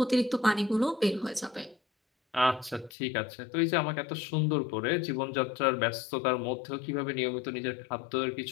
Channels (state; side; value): drops out; right; at 2.9 s